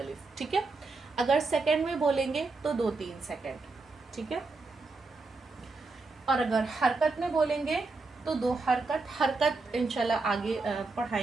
ठीक है, अगर सेकंड में बोलेंगे तो 2-3 सेकंड। ठीक है, और अगर हरकत में बोलेंगे तो 2 हरकत। हरकत इंशाल्लाह आगे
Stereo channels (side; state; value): left; quieter; 3.7 dB